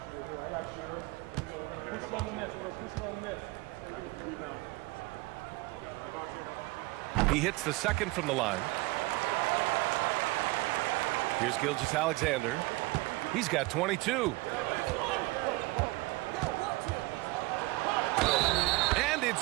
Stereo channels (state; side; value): quieter; left; 22.1 dB